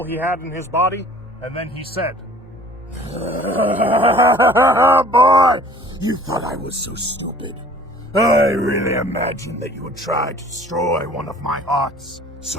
he had in his body, and then he said, Boy, you thought I was so stupid. I really imagined that you would try to destroy one of my hearts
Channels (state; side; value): normal; both; correlation 0.49